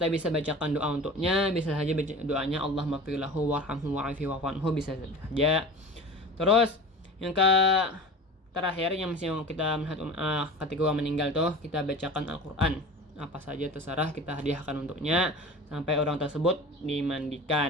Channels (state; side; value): normal; both; correlation 0.36